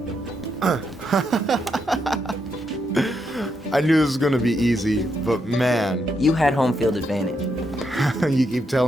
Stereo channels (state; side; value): normal; both; correlation 0.80